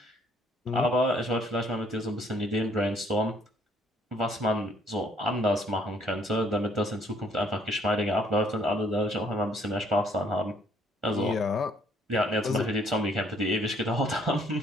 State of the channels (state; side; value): normal; both; correlation 0.64